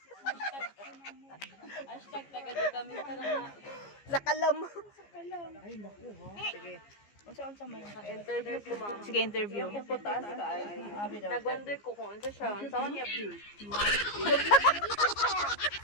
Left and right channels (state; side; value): late; right; 15 ms